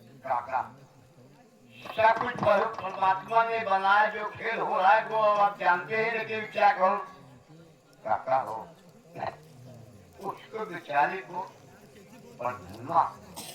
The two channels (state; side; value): identical; both; correlation 1.00